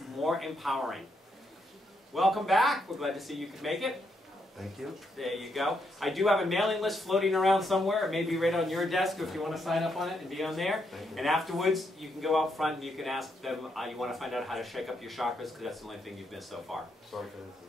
more empowering. Welcome back. We're glad to see you could make it. Thank you. There you go. I do have a mailing list floating around somewhere. It may be right on your desk if you want to sign up on it and be on there. And afterwards, you can go out front and you can ask them, you want to find out how to shake up your chakras, because that's the only thing you've missed so far. Sorry for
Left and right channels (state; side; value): normal; both; correlation 0.78